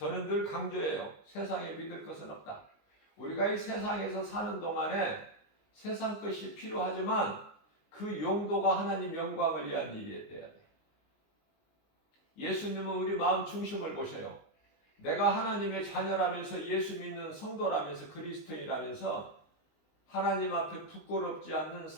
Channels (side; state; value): right; late; 20 ms